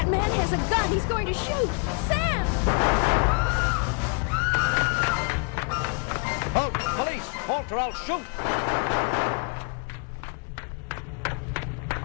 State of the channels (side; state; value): right; quieter; 36.3 dB